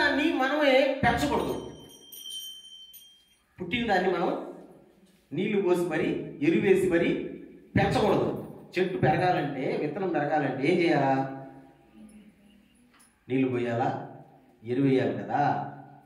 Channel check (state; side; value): identical; both; correlation 1.00